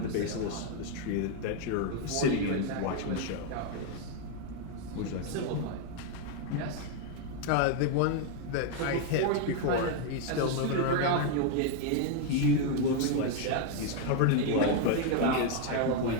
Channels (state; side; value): different; both; correlation 0.01